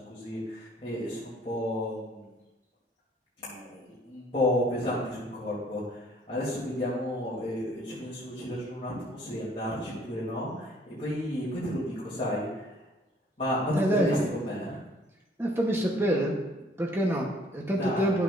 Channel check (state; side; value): normal; both; correlation 0.59